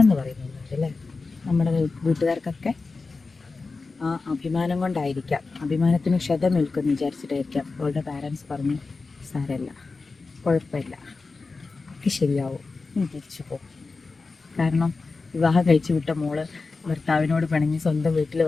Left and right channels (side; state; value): right; quieter; 4.0 dB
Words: എന്ന് പറയുന്നുണ്ട് അല്ലേ? നമ്മുടെ വീട്ടുകാർക്കൊക്കെ ആ അഭിമാനം കൊണ്ടായിരിക്കാം, അഭിമാനത്തിന് ക്ഷതമേൽക്കുമെന്ന് വിചാരിച്ചിട്ടായിരിക്കാം അവളുടെ പാരൻസ് പറഞ്ഞു, സാരമില്ല, കുഴപ്പമില്ല, ഒക്കെ ശരിയാവും, നീ തിരിച്ചു പോകും. കാരണം വിവാഹം കഴിച്ചു വിട്ട മോള് ഭർത്താവിനോട് പിണങ്ങി സ്വന്തം വീട്ടിൽ